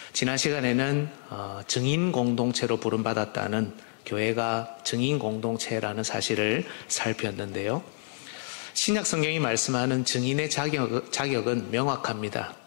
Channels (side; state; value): right; silent; digital silence